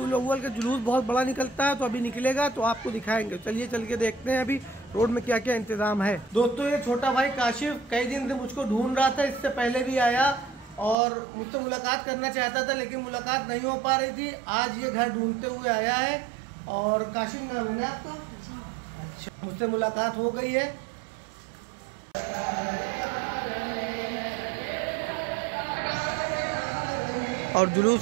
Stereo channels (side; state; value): left; drops out; at 11.0 s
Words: अव्वल का जुलूस बहुत बड़ा निकलता है, तो अभी निकलेगा तो आपको दिखाएंगे। चलिए चल के देखते हैं अभी रोड में क्या क्या इंतजाम है। दोस्तों, ये छोटा भाई काशिफ कई दिन से मुझको ढूंढ रहा था, इससे पहले भी आया और मुझसे मुलाकात करना चाहता था, लेकिन मुलाकात नहीं हो पा रही थी। आज ये घर ढूंढते हुए आया है। और काशिफ नाम है ना आपका? अच्छा, मुझसे मुलाकात हो गई है। और